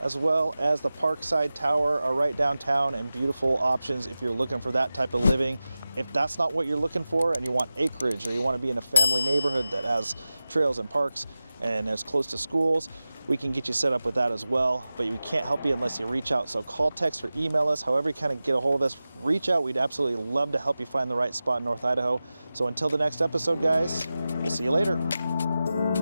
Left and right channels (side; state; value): both; inverted; correlation -0.95